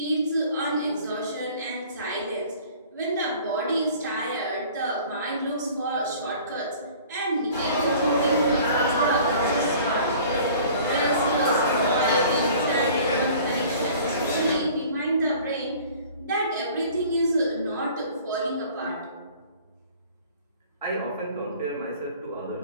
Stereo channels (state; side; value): inverted; both; correlation -0.48